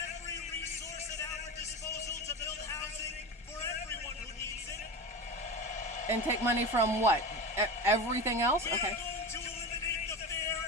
resource at our disposal to build housing for everyone who needs it. And take money from what? everything else? We Okay. are going to eliminate the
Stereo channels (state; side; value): normal; both; correlation 0.25